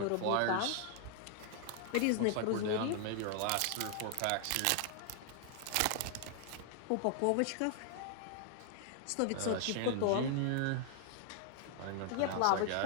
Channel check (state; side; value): different; both; correlation 0.00